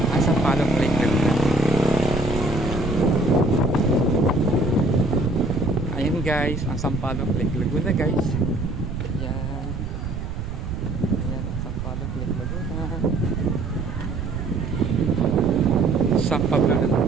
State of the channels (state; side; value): noise; right; rumble, 5 dB below the sound